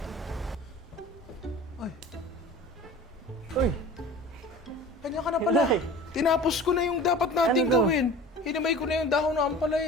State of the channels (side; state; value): both; normal; correlation 0.40